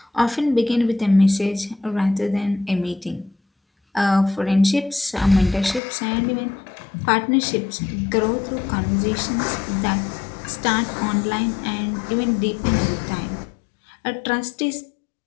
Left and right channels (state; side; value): drops out; right; at 5.8 s